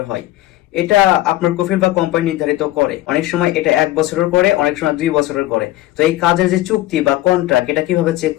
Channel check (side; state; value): right; quieter; 16.0 dB